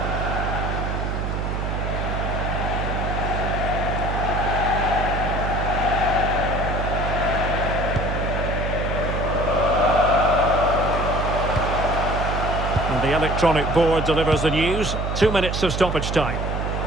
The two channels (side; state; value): right; noise; hum, 2 dB below the sound